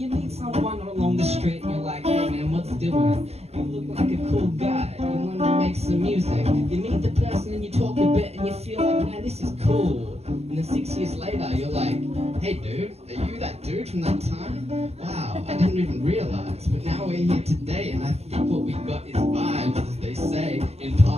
meet someone along the street, and you're like, hey man, what's doing? You look like a cool guy, you want to make some music. You meet the person and you talk a bit, and you feel like, man, this is cool. And then 6 years later, you're like, hey dude, are you that dude from that time? Wow, I didn't even realize, but now we're here today, and I think what we got is vibes, as they say in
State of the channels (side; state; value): left; late; 0.30 ms